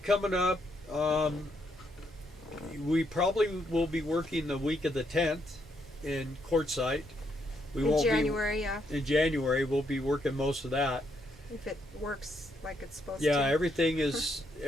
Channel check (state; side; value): normal; both; correlation 0.76